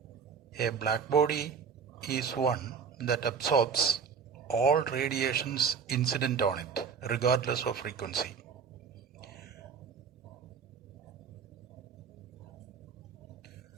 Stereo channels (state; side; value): quieter; left; 6.4 dB